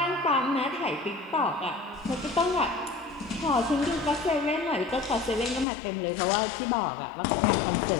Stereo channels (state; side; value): drops out; right; at 5.7 s